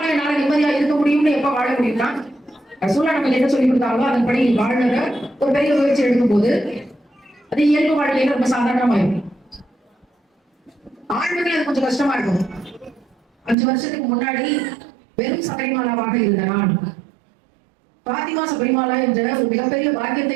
என்னால நிம்மதியா இருக்க முடியும்னு எப்ப வாழ முடியும்னா, ரசூலுல்லாஹ் நமக்கு என்ன சொல்லி கொடுத்தாங்களோ அதன்படி வாழ்ற ஒரு பெரிய முயற்சி எடுக்கும் போது அது இயல்பு வாழ்க்கையில ரொம்ப சாதாரணமா இருக்கும். ஆண்மைகள் அது கொஞ்சம் கஷ்டமா இருக்கும். 5 வருஷத்துக்கு முன்னாடி வெறும் சபரிமாலாவாக இருந்த நான் பாத்திமா சபரிமாலா என்ற ஒரு மிகப்பெரிய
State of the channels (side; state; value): left; drops out; at 13.6 s